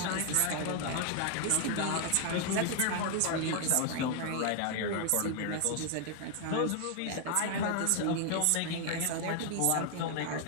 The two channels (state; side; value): different; both; correlation 0.00